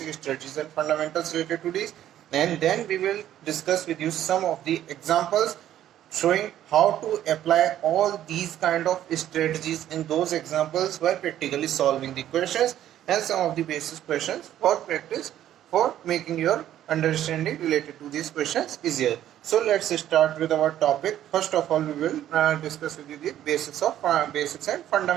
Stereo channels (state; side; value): quieter; left; 11.8 dB